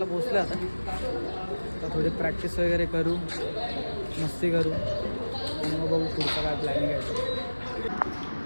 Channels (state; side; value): inverted; both; correlation -1.00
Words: पोहोचलो आता. थोडी प्रॅक्टिस वगैरे करू, मस्ती करू आणि मग बघू पुढचं काय प्लॅनिंग आहे.